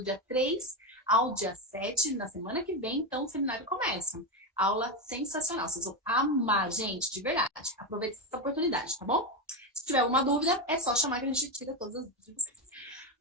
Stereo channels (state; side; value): normal; both; correlation 0.11